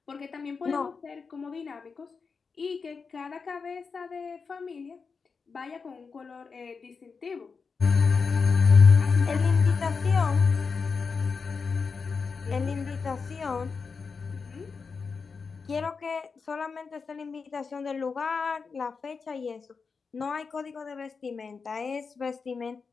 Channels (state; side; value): quieter; right; 5.1 dB